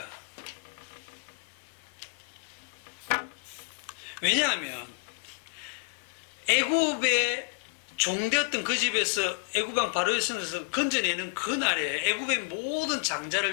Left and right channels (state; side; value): quieter; right; 37.6 dB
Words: 왜냐하면 애굽의 종되었던 그 집에서 애굽왕 바로의 손에서 건져내는 그날에, 애굽의 모든